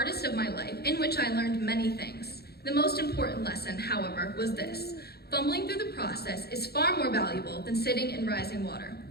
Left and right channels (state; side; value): late; right; 0.46 ms